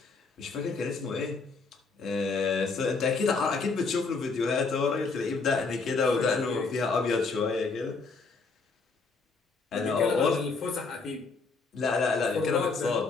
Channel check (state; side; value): quieter; right; 4.3 dB